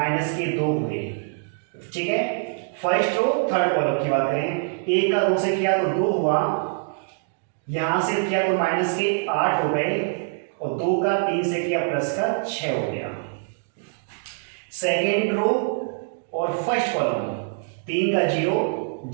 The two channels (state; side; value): silent; left; digital silence